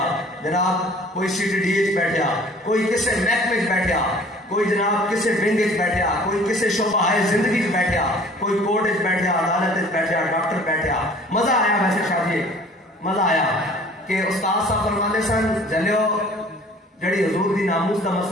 جناب کوئی CTD اچ بیٹھیا کوئی کسے محکمے اچ بیٹھیا کوئی جناب کسے ونگ اچ بیٹھیا کوئی کسے شعبہ زندگی اچ بیٹھیا کوئی کورٹ اچ بیٹھیا عدالت اچ بیٹھیا ڈاکٹر بیٹھیا. مزہ آیا ویسے شادی مزہ آیا کہ استاد صاحب فرماندے سن جلیو جڑی حضور دی ناموس دا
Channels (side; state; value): both; normal; correlation 0.50